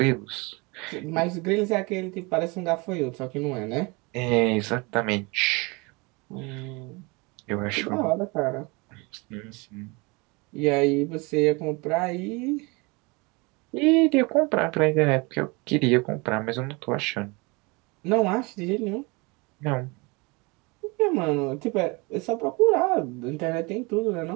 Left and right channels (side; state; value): left; quieter; 27.2 dB